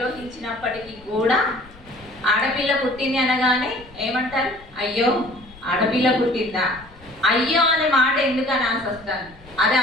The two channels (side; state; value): left; noise; rumble, 23 dB below the sound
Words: కూడా ఆడపిల్ల పుట్టింది అనగానే ఏమంటారు? అయ్యో ఆడపిల్ల పుట్టిందా, అయ్యో అనే మాట ఎందుకు అనాల్సి వస్తాను. అదే